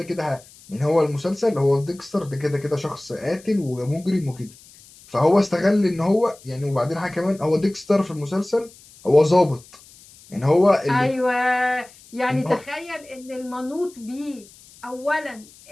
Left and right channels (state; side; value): noise; left; hiss, 24 dB below the sound